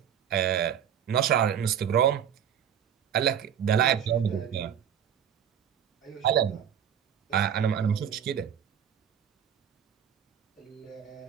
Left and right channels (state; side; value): quieter; left; 9.0 dB